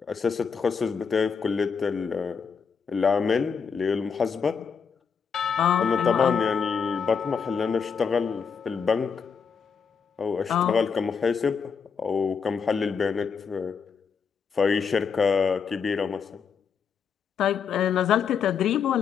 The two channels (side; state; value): right; quieter; 6.2 dB